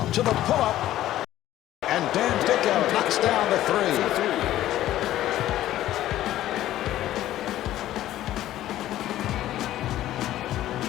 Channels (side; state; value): right; quieter; 13.7 dB